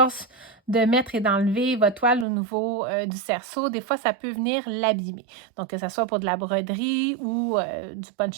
de mettre et d'enlever votre toile au niveau du cerceau, des fois, ça peut venir l'abîmer. Donc, que ce soit pour de la broderie ou du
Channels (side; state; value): left; drops out; at 2.2 s